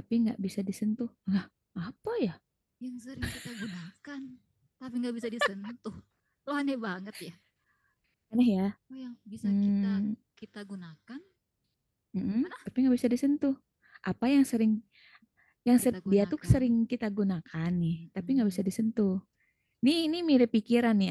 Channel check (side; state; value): both; identical; correlation 1.00